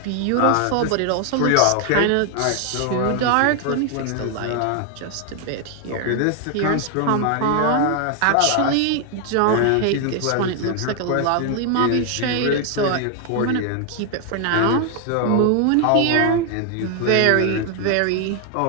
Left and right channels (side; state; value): both; different; correlation 0.00